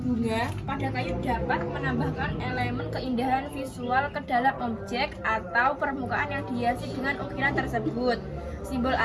bunga pada kayu dapat menambahkan elemen keindahan visual ke dalam objek atau permukaan yang dihiasi dengan ukiran tersebut. Simbol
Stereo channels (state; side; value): identical; both; correlation 1.00